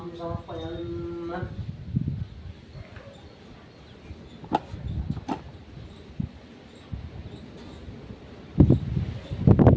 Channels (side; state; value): both; identical; correlation 1.00